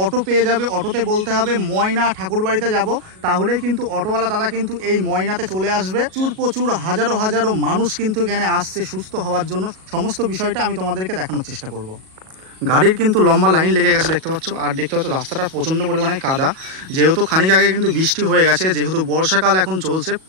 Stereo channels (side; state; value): left; late; 37 ms